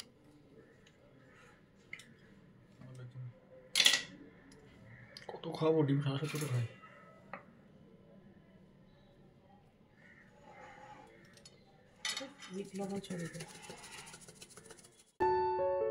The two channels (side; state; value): both; identical; correlation 1.00